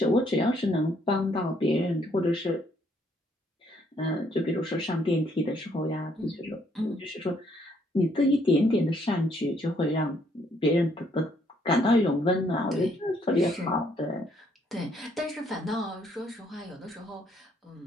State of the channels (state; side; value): normal; both; correlation 0.68